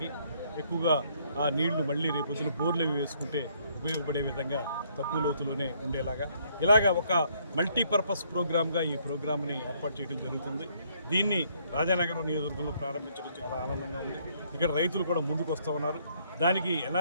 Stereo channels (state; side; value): inverted; both; correlation -0.67